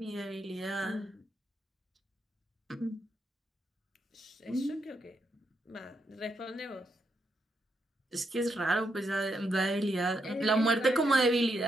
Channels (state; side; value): normal; both; correlation 0.80